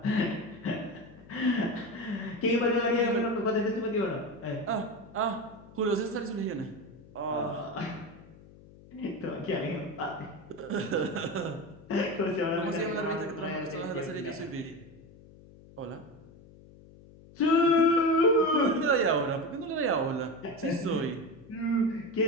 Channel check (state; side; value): noise; left; hum, 22 dB below the sound